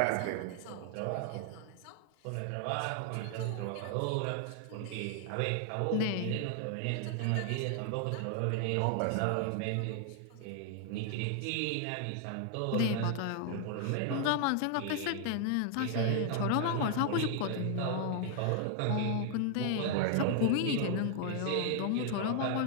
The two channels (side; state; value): both; different; correlation 0.00